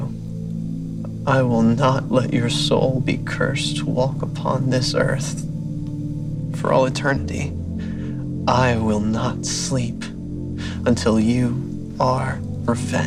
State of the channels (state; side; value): identical; both; correlation 1.00